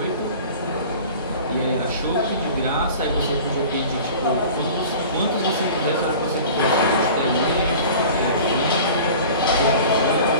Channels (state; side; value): inverted; both; correlation -0.41